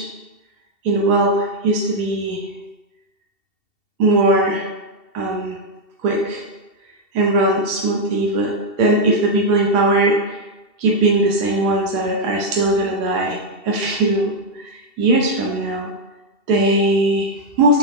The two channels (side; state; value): right; late; 2.7 ms